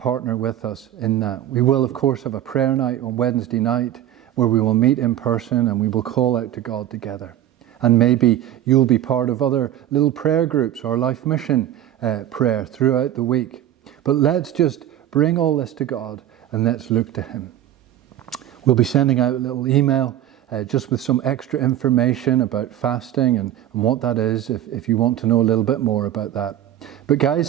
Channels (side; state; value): left; quieter; 11.8 dB